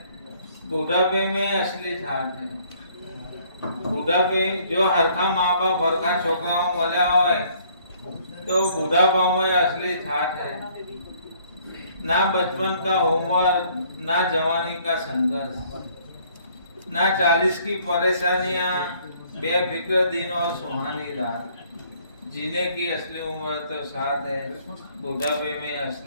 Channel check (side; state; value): both; inverted; correlation -0.62